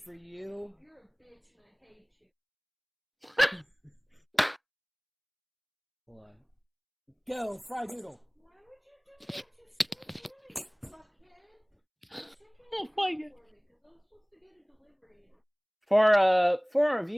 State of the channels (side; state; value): both; identical; correlation 1.00